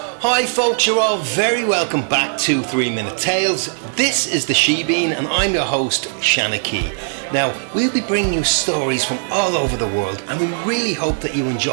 Hi folks, you're all very welcome back to 3 Minute Tales. This is the She-Bean and I'm your host, Shanna Key. Now, we'll be bringing you stories from all over the world and we really hope that you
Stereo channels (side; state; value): left; silent; digital silence